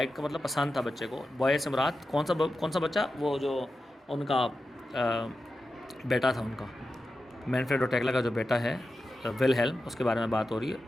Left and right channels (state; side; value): normal; both; correlation 0.91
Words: کا مطلب پسند تھا بچے کو۔ بوائے سے مراد کون سا بچہ؟ وہ جو ان کا بیٹا تھا، ان کا مینفریڈ اور ٹیکلا کا جو بیٹا ہے ولہیلم، اس کے بارے میں بات ہو رہی ہے۔